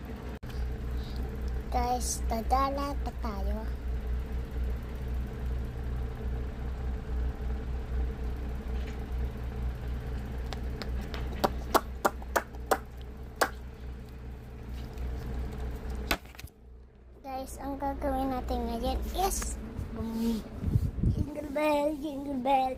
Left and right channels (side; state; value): both; identical; correlation 1.00